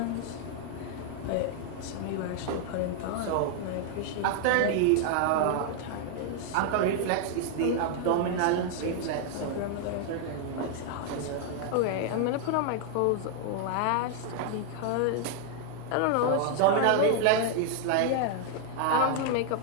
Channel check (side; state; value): both; different; correlation 0.00